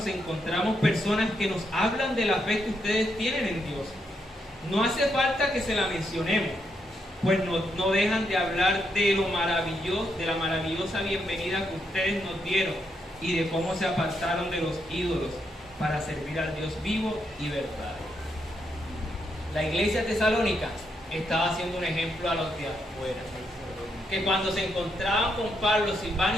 encontramos personas que nos hablan de la fe que ustedes tienen en Dios. No hace falta que se la mencionemos, pues no dejan de hablar de lo maravilloso, de la maravillosa bienvenida que ustedes nos dieron y de cómo se apartaron de los ídolos para servir al Dios vivo y verdadero. La iglesia tesalónica estaba haciendo un ejemplo a los de afuera, que cuando se encontraban con Pablo,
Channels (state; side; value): normal; both; correlation 0.79